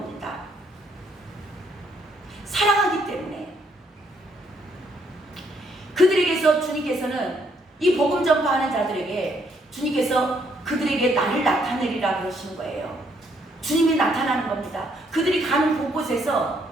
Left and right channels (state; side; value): normal; both; correlation 0.70